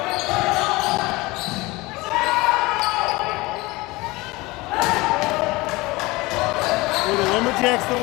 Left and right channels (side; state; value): right; quieter; 22.0 dB